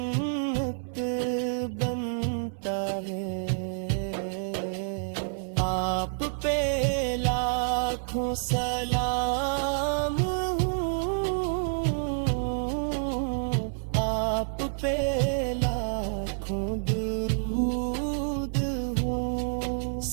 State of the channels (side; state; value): left; silent; 59 dB below the other